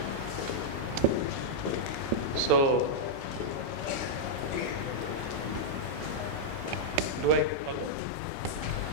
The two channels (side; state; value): both; normal; correlation -0.04